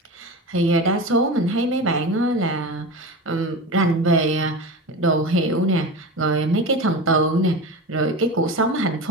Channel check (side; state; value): both; normal; correlation 0.27